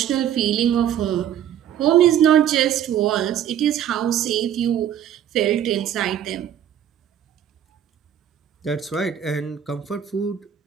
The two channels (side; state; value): left; quieter; 10.0 dB